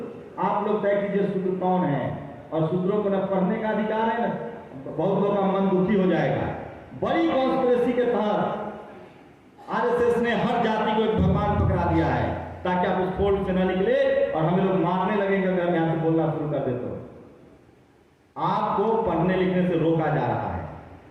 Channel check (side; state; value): both; identical; correlation 1.00